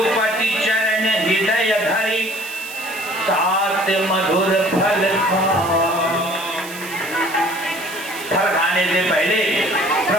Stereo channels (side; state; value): right; noise; hiss, 13 dB below the sound